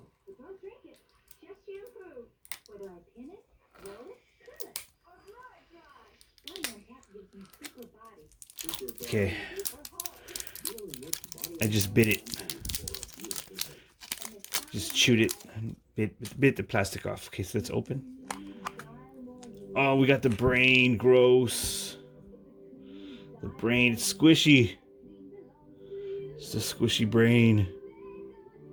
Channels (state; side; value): identical; both; correlation 1.00